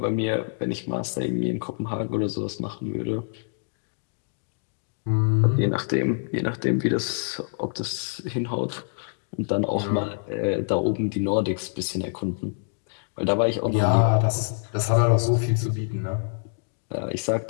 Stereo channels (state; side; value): silent; right; 61 dB below the other